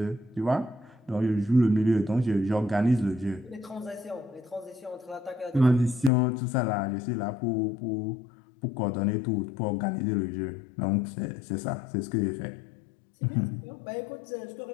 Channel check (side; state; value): right; drops out; at 6.1 s